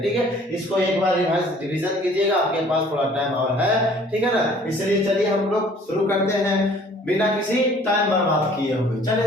ठीक है, इसको एक बार रिवीजन कीजिएगा, आपके पास थोड़ा टाइम और है। ठीक है ना, इसलिए चलिए हम लोग शुरू करते हैं बिना किसी टाइम बर्बाद किए हुए।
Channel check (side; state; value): both; normal; correlation 0.54